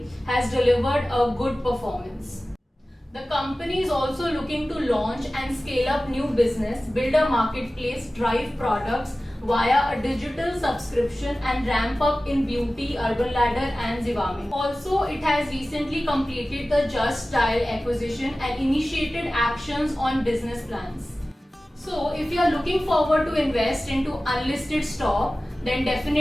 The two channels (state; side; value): normal; both; correlation 0.96